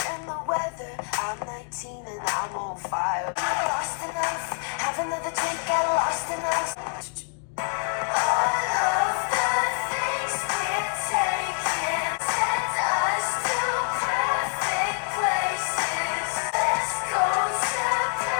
and the weather. I'm 19 and I'm on fire. I lost enough, have another drink, get lost enough. All of the things we're taking send us to perfect places. Let's go to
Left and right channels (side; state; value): right; silent; 56 dB below the other